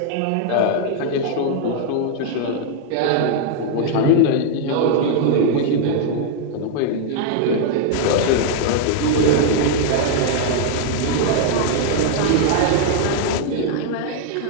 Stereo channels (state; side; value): different; both; correlation 0.00